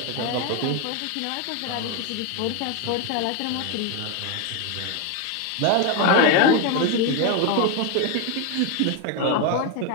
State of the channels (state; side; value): different; both; correlation 0.02